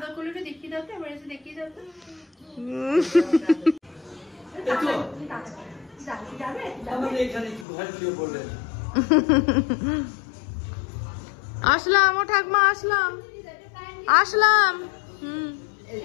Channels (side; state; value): right; drops out; at 7.7 s